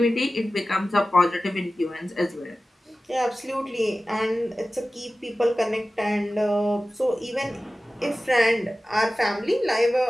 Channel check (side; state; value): both; normal; correlation 0.95